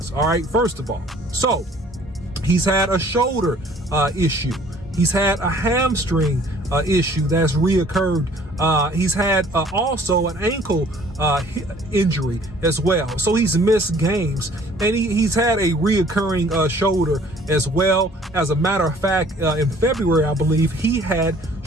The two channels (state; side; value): normal; both; correlation 0.55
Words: All right, first of all, so he's had a shoulder issue. He's had a hamstring issue that's reoccurred. He's had also an ankle injury as well. So he's missed games, and he's had a reoccurring shoulder as well. As a matter of fact, in February, I believe, he had